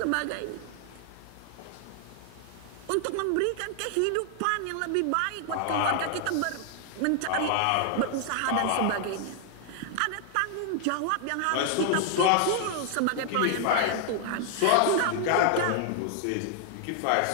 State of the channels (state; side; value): different; both; correlation 0.00